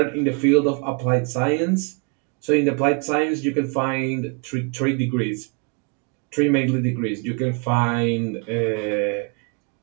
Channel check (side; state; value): left; quieter; 34.0 dB